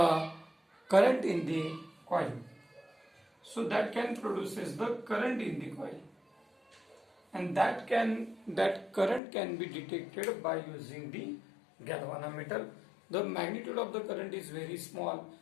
current in the coil. So that can produces the current in the coil, and that current can be detected by using the galvanometer. The magnitude of the current is very small,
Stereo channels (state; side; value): drops out; right; at 9.2 s